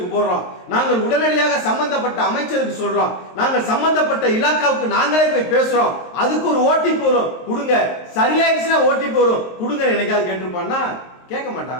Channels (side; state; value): right; late; 23 ms